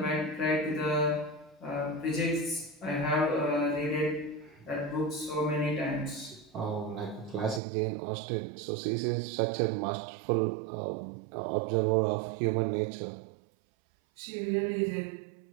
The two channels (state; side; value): drops out; left; at 7.6 s